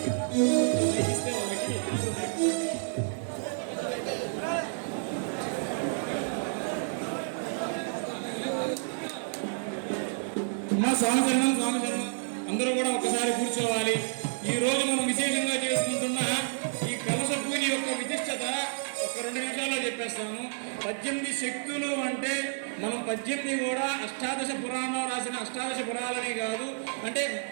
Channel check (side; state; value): left; silent; digital silence